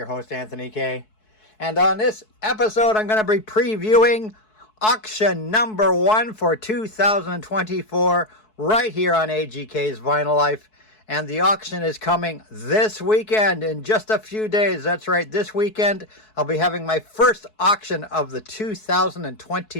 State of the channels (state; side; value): late; right; 4.6 ms